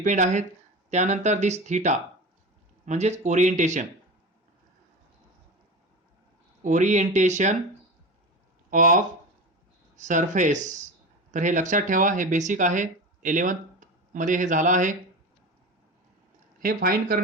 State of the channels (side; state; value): both; normal; correlation 0.27